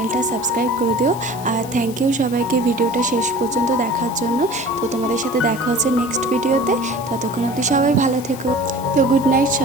সাবস্ক্রাইব করে দিও। আর থ্যাংক ইউ সবাইকে ভিডিওটা শেষ পর্যন্ত দেখার জন্য। তো তোমাদের সাথে দেখা হচ্ছে নেক্সট ভিডিওতে। ততক্ষণ অবধি সবাই ভালো থেকো। তো গুড নাইট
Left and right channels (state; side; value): noise; left; hiss, 16 dB below the sound